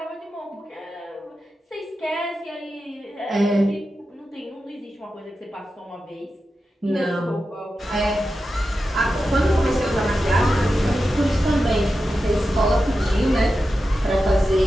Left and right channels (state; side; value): normal; both; correlation 0.91